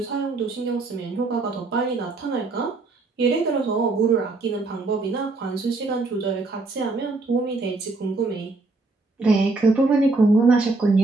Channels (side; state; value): left; quieter; 3.5 dB